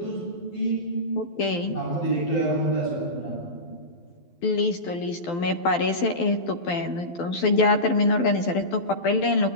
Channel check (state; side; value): late; right; 12 ms